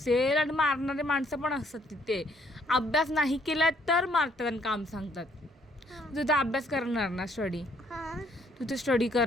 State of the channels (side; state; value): both; normal; correlation 0.66